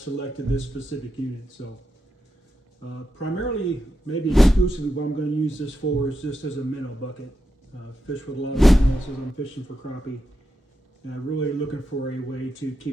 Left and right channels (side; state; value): both; normal; correlation 0.87